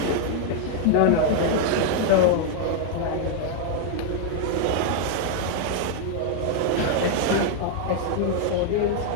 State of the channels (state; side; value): different; both; correlation 0.00